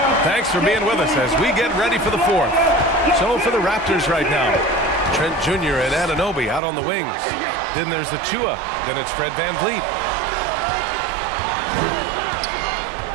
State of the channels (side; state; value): left; drops out; at 6.6 s